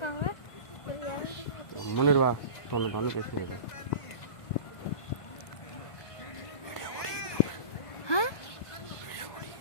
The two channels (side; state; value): right; late; 1.5 ms